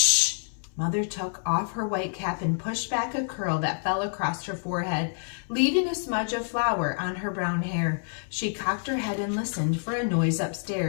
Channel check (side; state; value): right; silent; 60 dB below the other